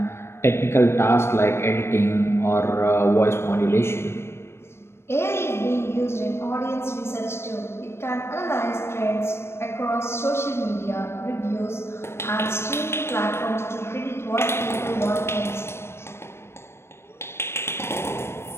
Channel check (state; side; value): late; right; 0.12 ms